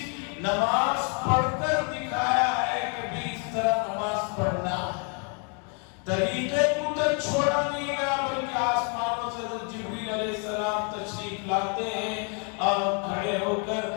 نماز پڑھ کر دکھایا ہے کہ بھی اس طرح نماز پڑھنا ہے۔ طریقے کو تو چھوڑا نہیں گیا، بلکہ آسمانوں سے حضرت جبریل علیہ السلام تشریف لاتے ہیں اور کھڑے ہو کر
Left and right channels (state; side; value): quieter; right; 38.7 dB